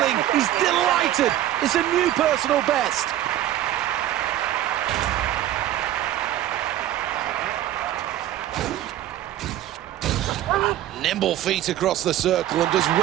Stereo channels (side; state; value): left; quieter; 13.0 dB